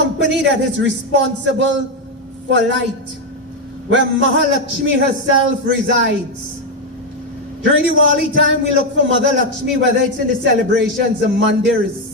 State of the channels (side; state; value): both; normal; correlation 0.05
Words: that is responsible for light, where Mahalakshmi herself resides. During Diwali time, we look for Mother Lakshmi, whether it's in the celebrations, the